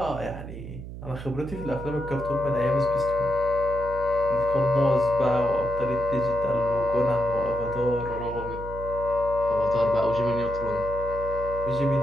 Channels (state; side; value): noise; right; hum, 11 dB below the sound